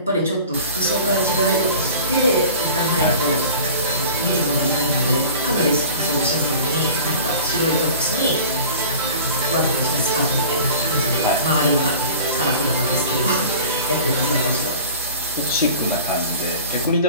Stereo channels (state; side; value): inverted; both; correlation -0.40